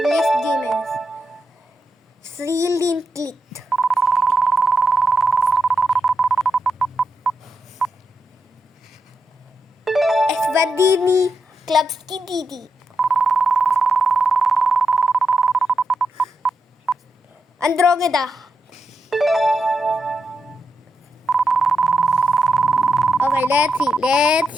demons. 3 link clicked. Esvadini Klubski Didi. Andromeda. Okay,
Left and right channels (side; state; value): both; normal; correlation 0.85